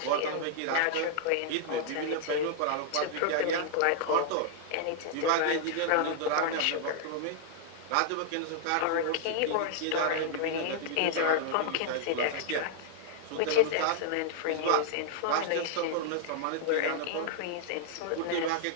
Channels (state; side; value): different; both; correlation -0.01